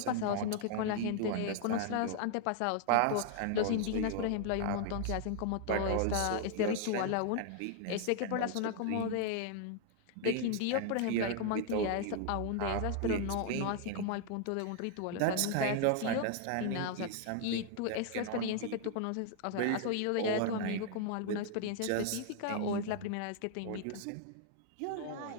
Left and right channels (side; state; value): both; different; correlation 0.00